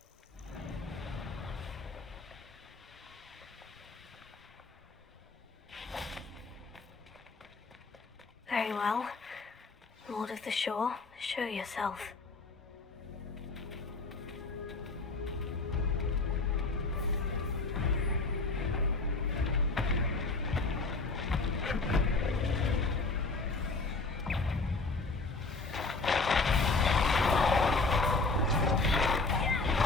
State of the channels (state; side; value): quieter; right; 3.7 dB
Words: Very well. Lord of the Shore, show yourself.